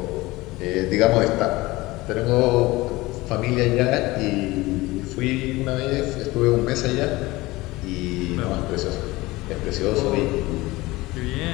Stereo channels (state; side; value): quieter; right; 20.3 dB